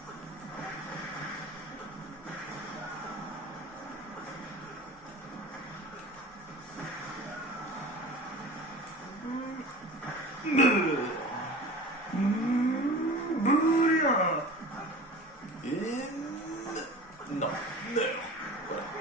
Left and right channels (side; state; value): both; normal; correlation 0.38